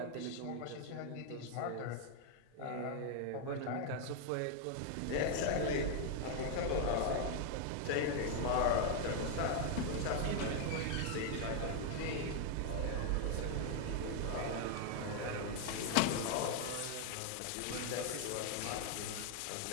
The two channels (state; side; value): different; both; correlation 0.00